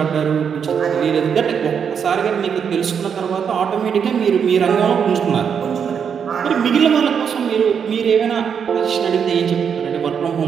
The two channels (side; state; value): left; quieter; 7.2 dB